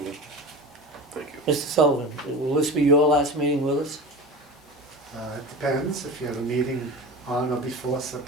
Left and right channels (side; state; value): both; normal; correlation 0.31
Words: Thank you. Mr. Sullivan, will this be your last meeting with us? It depends, if you have a meeting on or before